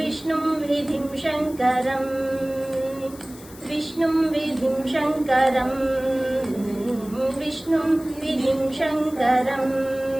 విధిం శంకరం విష్ణుం విధిం శంకరం విష్ణుం విధిం శంకరం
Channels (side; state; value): left; noise; hiss, 20 dB below the sound